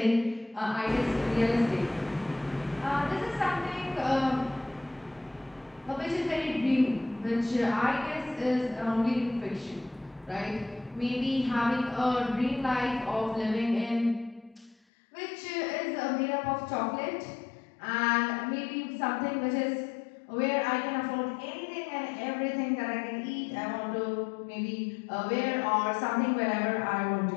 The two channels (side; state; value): right; drops out; at 14.8 s